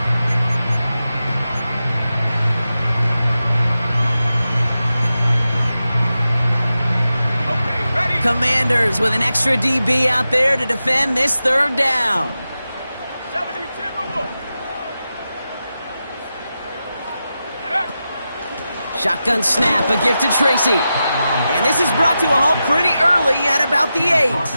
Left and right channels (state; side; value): inverted; both; correlation -0.91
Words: Commanders with an extra DB out there to defend this 3rd down. 70 Timberwolves. Shotgun snap, a gift to Tracy. And this is brought to a halt pretty early at about the 8.